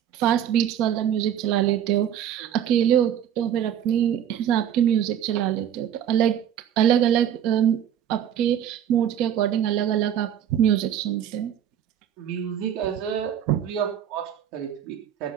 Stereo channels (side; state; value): left; quieter; 9.8 dB